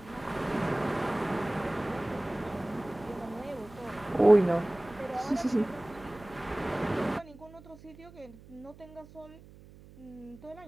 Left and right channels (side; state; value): right; noise; hum, 21 dB below the sound